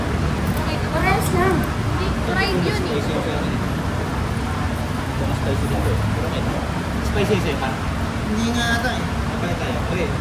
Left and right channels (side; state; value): both; identical; correlation 1.00